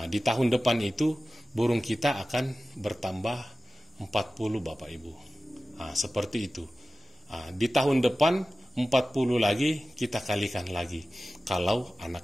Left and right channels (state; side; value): normal; both; correlation 0.96